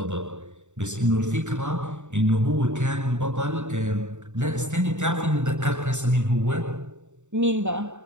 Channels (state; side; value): late; left; 0.84 ms